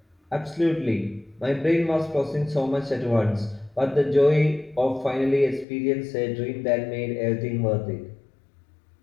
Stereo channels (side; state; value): right; drops out; at 5.7 s